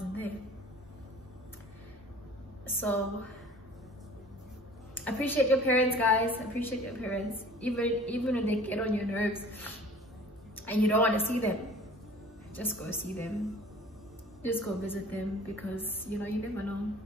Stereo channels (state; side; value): normal; both; correlation 0.47